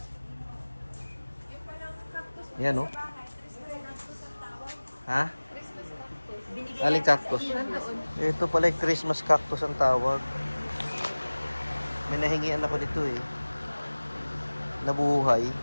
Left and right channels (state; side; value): inverted; both; correlation -1.00